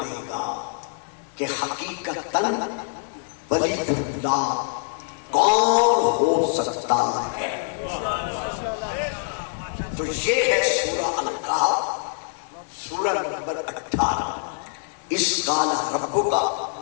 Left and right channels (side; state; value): right; silent; 59 dB below the other